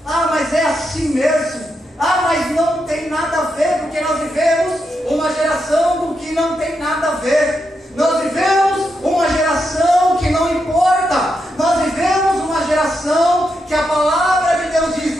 mas é assim mesmo, mas não tem nada a ver, porque nós vivemos uma geração do que não tem nada a ver, nós vivemos uma geração que não importa, nós vivemos uma geração que a palavra de Deus diz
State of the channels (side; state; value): both; normal; correlation 0.84